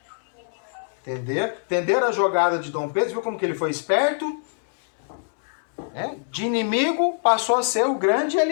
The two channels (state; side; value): silent; right; digital silence